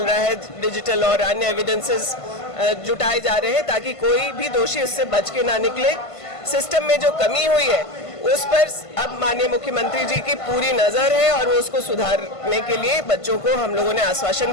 रहा है। डिजिटल और अन्य एविडेंसेस जुटाए जा रहे हैं ताकि कोई भी दोषी उससे बच के ना निकले। सिस्टम में जो कमी हुई है उस पर अब माननीय मुख्यमंत्री जी की पूरी नजर है और वो उसको सुधारने के लिए बच्चों को हम लोगों ने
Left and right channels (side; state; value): right; late; 1.5 ms